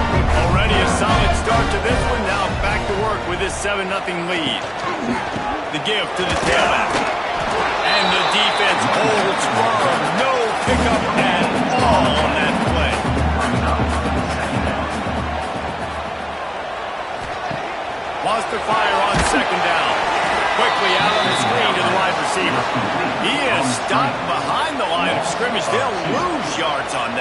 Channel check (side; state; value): both; identical; correlation 1.00